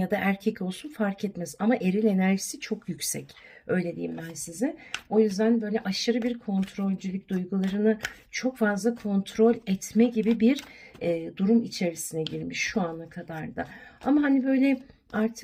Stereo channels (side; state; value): both; identical; correlation 1.00